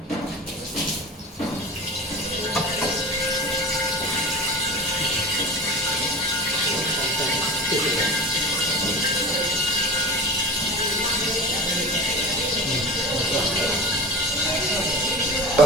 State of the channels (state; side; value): normal; both; correlation 0.32